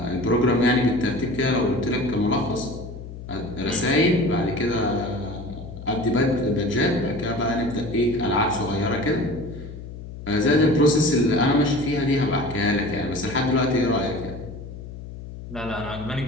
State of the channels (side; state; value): left; noise; hum, 12 dB below the sound